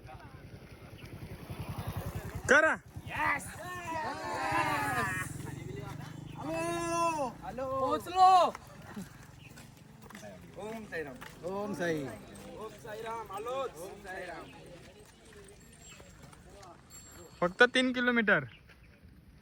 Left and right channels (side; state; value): both; identical; correlation 1.00